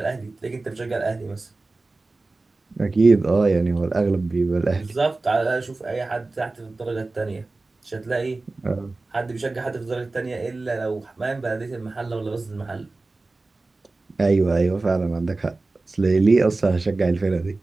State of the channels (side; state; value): left; quieter; 3.4 dB